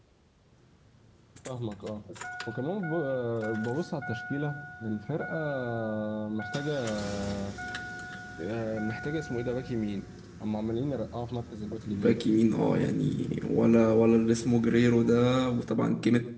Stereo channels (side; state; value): both; identical; correlation 1.00